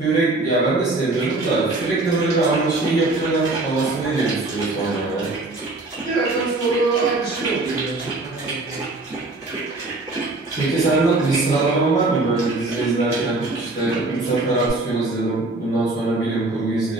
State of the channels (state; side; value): quieter; left; 3.0 dB